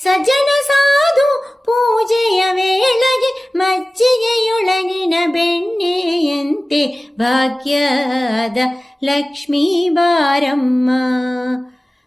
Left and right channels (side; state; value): both; normal; correlation 0.97